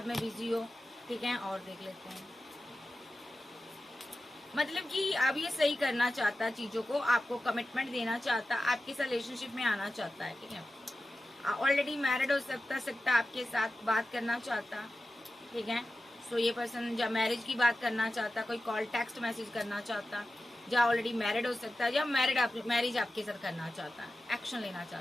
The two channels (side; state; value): both; normal; correlation 0.94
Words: में बिजी हो, ठीक है। और देख लेते हैं, मतलब कि अब ये सही करना चाहता चीजों को, आपको कमिटमेंट देना चाहता, आपके साथ रिलेशनशिप में आना चाहता है, ठीक है। ऑलरेडी मैरिड हो सकता आपके साथ बात करना चाहता, ठीक है। सो ये पर्सन जब मैरिज की बात करना चाहता, कोई कॉल टेक्स्ट मैसेज करना चाहता, या ऑलरेडी मैरिड हो सकता है, या मैरिज आपके साथ करना चाहता, एक्शन लेना